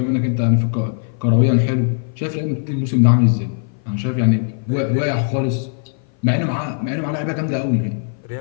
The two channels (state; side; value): silent; right; 57 dB below the other